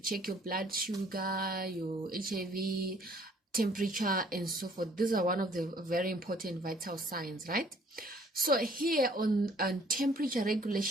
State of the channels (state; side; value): normal; both; correlation 0.59